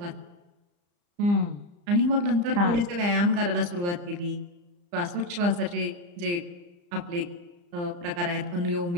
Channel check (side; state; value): left; late; 34 ms